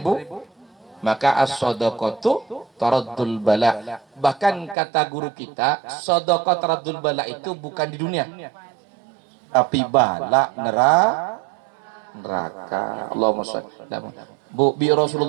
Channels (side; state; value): left; drops out; at 4.8 s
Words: maka as-shadaqatu taraddul bala. Bahkan kata guru kita, shadaqah taraddul bala itu bukan di dunia, tapi bala neraka. Allahumma shalli. Bu, bi